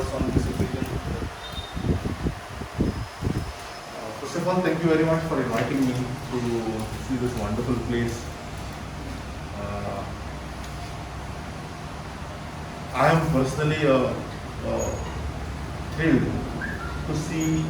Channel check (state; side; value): identical; both; correlation 1.00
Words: on this occasion. First of all, thank you very much for inviting me to see this wonderful place. I am personally thrilled to see